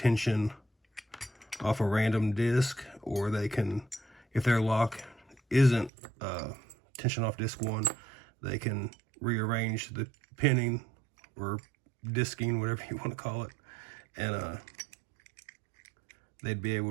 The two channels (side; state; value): left; drops out; at 5.9 s